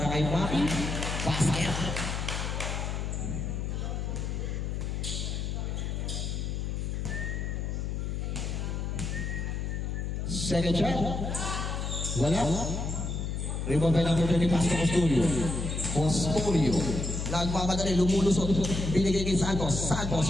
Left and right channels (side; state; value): left; noise; hum, 2 dB below the sound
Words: kay Maki, basket. Second shot, wala. Rebound by number 20, pass to Custodio. Nagmamadali, lumulusot. Binigay kay Santos. Santos,